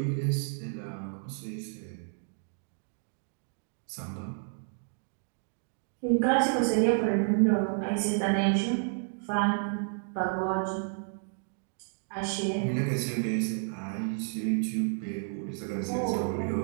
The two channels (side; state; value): left; silent; 57 dB below the other